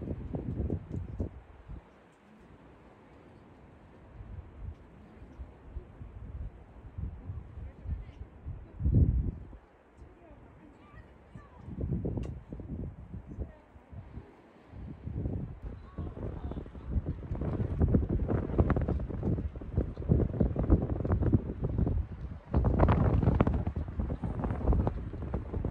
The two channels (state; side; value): identical; both; correlation 1.00